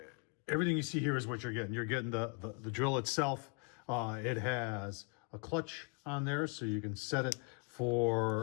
Everything you see here is what you're getting. You're getting the drill itself. It has a clutch on there, so you can set it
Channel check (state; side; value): quieter; right; 34.2 dB